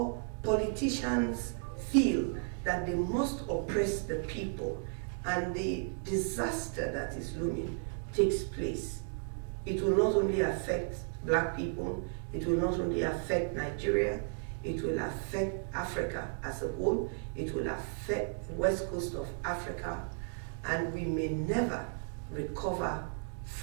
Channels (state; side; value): silent; left; 55 dB below the other